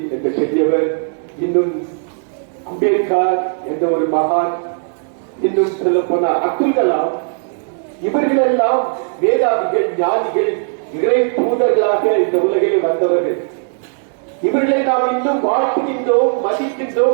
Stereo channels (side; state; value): left; silent; 62 dB below the other